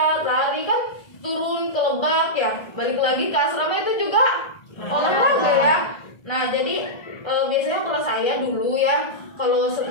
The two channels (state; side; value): late; right; 1.3 ms